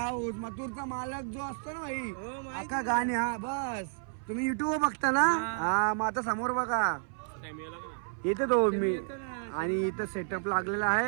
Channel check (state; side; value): silent; left; 57 dB below the other